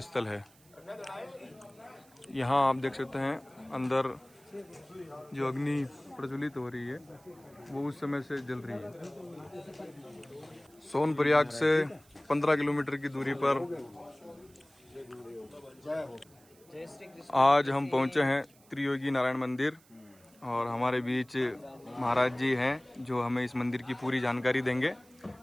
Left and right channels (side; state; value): right; noise; hiss, 28 dB below the sound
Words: स्थल है। यहाँ आप देख सकते हैं अंदर जो अग्नि प्रज्वलित हो रही है वो उस समय से जल रही है। सोनप्रयाग से 15 किलोमीटर की दूरी पर आज हम पहुंचे हैं त्रियोगी नारायण मंदिर और हमारे बीच महाराज जी हैं जो हमें इस मंदिर की पूरी जानकारी देंगे।